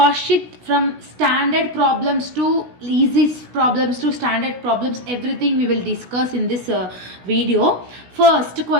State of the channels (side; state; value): left; late; 16 ms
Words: sheet, from standard problems to easy problems to standard problems, everything we will discuss in this video. First